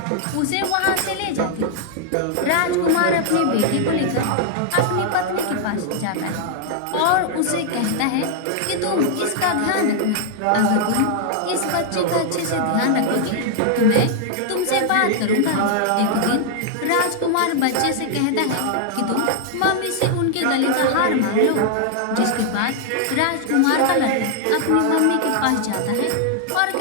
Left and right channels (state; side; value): different; both; correlation -0.01